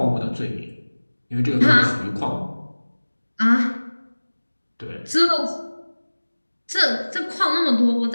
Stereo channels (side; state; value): both; inverted; correlation -1.00